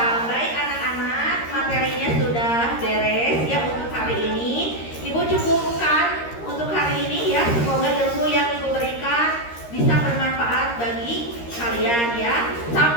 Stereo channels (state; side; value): late; right; 13 ms